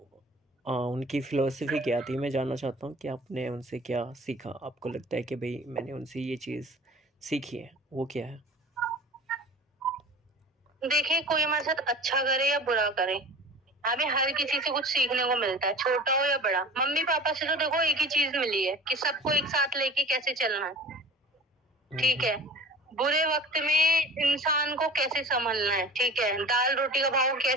उनकी फ़िलॉसफ़ी क्या थी? मैं जानना चाहता हूँ कि आपने उनसे क्या सीखा? आपको लगता है कि भई मैंने उनसे ये चीज़ सीखी है, वो क्या है? देखिए, कोई हमारे साथ अच्छा करे या बुरा करे, हमें हर किसी से कुछ सीखने को मिलता है, छोटा हो या बड़ा। मम्मी पापा से तो देखो एक ही चीज मिली है कि सबको एक साथ लेके कैसे चलना है, ठीक है। बुरे वक्त में इंसान को कैसे संभलना है, ठीक है। दाल रोटी का भाव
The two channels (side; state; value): both; normal; correlation 0.40